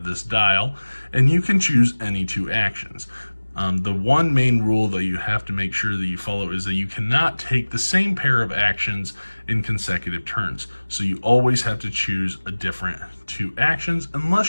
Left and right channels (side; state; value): both; inverted; correlation -1.00